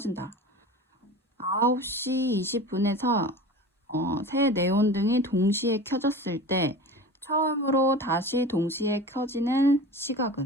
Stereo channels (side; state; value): both; normal; correlation 0.34